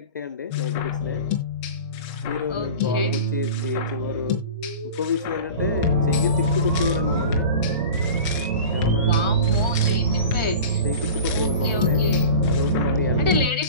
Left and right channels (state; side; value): inverted; both; correlation -0.36